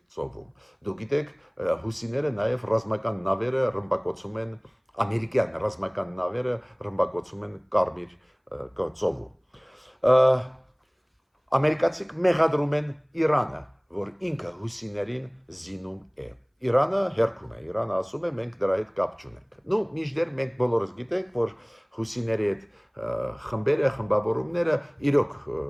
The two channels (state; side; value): identical; both; correlation 1.00